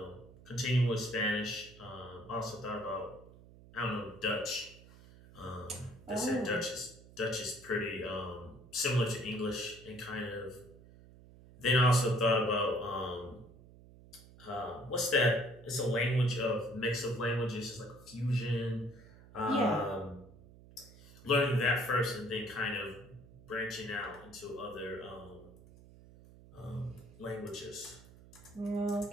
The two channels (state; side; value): noise; right; hum, 21 dB below the sound